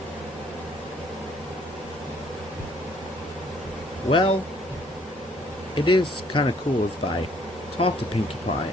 Well, it is kind of cool if I talk to Pinkie Pie,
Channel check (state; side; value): normal; both; correlation 0.62